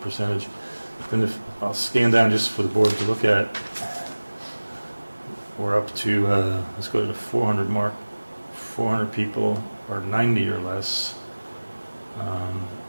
percentage. Then if I'll scan down just for the board to look at, we're up to, let's go to the 400 mark. 400 people are 90 or less. And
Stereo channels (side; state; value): both; inverted; correlation -1.00